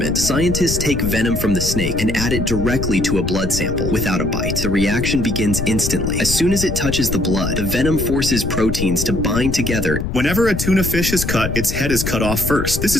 scientists take venom from the snake and add it directly to a blood sample without a bite. The reaction begins instantly. As soon as it touches the blood, the venom forces proteins to bind together. Whenever a tuna fish is cut, its head is cut off first. This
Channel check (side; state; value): left; noise; rumble, 4 dB below the sound